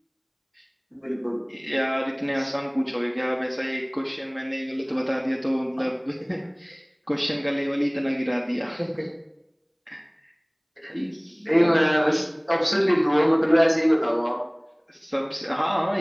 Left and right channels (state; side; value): identical; both; correlation 1.00